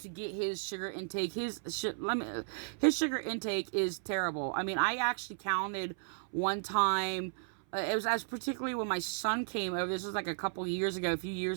get his sugar intake, his sugar intake is terrible. I mean, I actually counted one time. It was as particularly when my son came over. This was like a few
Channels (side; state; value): left; silent; 55 dB below the other